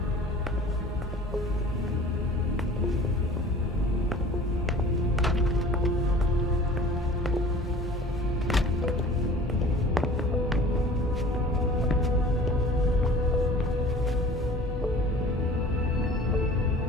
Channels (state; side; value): normal; both; correlation 0.44